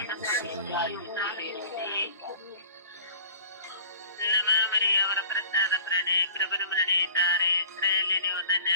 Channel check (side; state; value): both; inverted; correlation -0.48